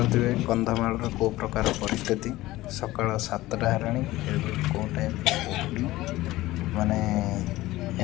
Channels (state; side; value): quieter; right; 17.5 dB